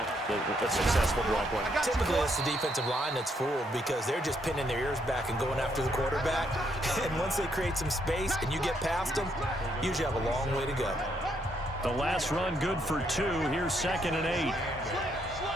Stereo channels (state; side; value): normal; both; correlation 0.74